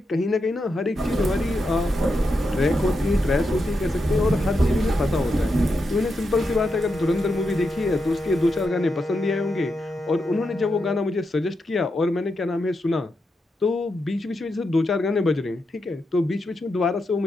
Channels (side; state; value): both; normal; correlation 0.85